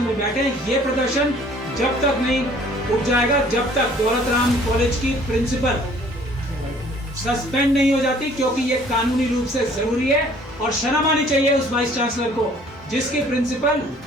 में बैठे। ये प्रदर्शन जब तक नहीं उठ जाएगा, जब तक दौलत राम कॉलेज की प्रिंसिपल सस्पेंड नहीं हो जाती, क्योंकि ये कानूनी रूप से जरूरी है। और शर्म आनी चाहिए उस वाइस चांसलर को जिसकी प्रिंसिपल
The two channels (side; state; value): both; normal; correlation 0.55